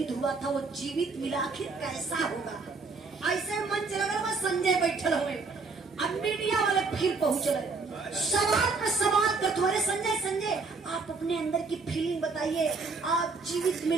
हुआ था वो जीवित मिला, आखिर कैसा होगा। ऐसे मंच लगल में संजय बैठल हुए। अब मीडिया वाले फिर पहुंचले, सवाल पे सवाल करते। अरे संजय आप अपने अंदर की फीलिंग बताइए। आप जीवित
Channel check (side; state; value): left; quieter; 4.2 dB